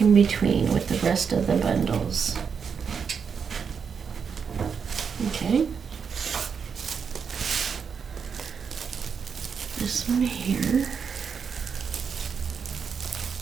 in between with the rest of the bundles. Okay. This one here.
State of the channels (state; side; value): quieter; left; 6.4 dB